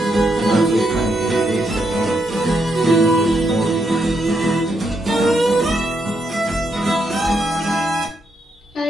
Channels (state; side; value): normal; both; correlation 0.79